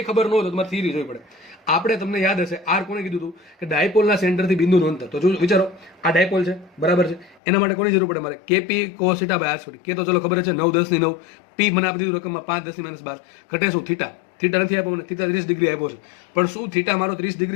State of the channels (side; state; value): right; drops out; at 7.4 s